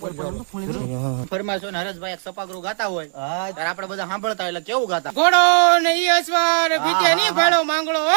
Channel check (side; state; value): left; silent; digital silence